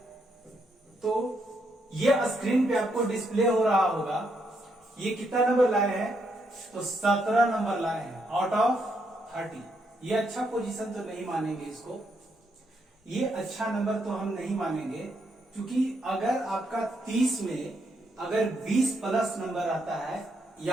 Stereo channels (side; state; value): both; normal; correlation 0.77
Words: तो ये स्क्रीन पे आपको डिस्प्ले हो रहा होगा। ये कितना नंबर लाए हैं, तो 17 नंबर लाए हैं आउट ऑफ 30। ये अच्छा पोजीशन तो नहीं मानेंगे इसको, ये अच्छा नंबर तो हम नहीं मानेंगे, क्योंकि अगर आपका 30 में अगर 20 प्लस नंबर आता है